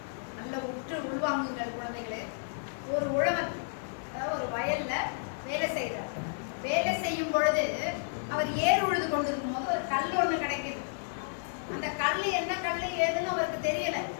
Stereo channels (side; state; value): right; silent; digital silence